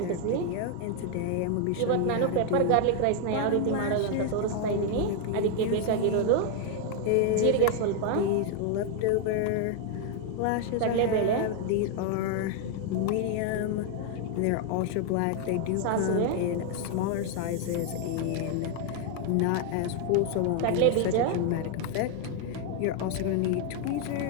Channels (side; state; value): both; different; correlation 0.00